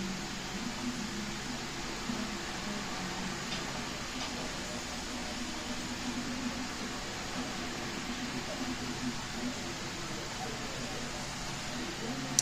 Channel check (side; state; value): both; identical; correlation 1.00